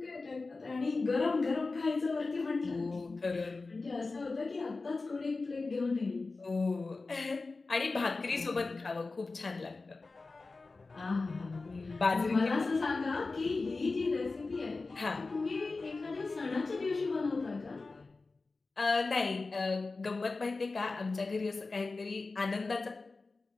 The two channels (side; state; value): right; quieter; 3.7 dB